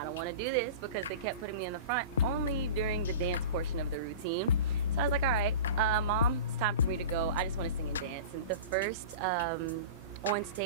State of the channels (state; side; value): inverted; both; correlation -0.34